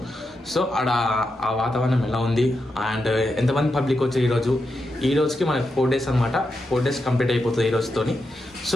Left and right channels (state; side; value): normal; both; correlation 0.86